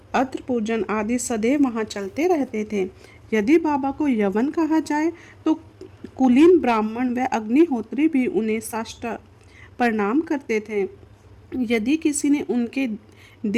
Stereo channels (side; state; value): both; identical; correlation 1.00